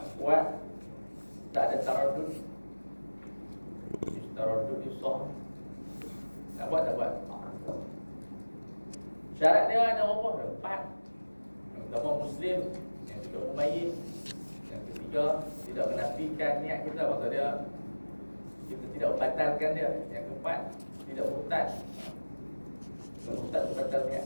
kuat, tak ada taraddud. Taraddud ni sah. Nak buat tak buat. Syarat dia ada berapa? 4. Yang pertama Muslim, yang kedua mumayyiz, yang ketiga tidak menafikan niat kita, maksud dia kita tidak membatalkan dia. Yang keempat tidak murtad. Kalau murtad itu batal niat.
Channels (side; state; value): both; inverted; correlation -1.00